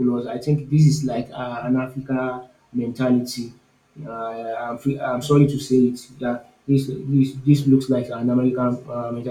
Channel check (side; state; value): both; identical; correlation 1.00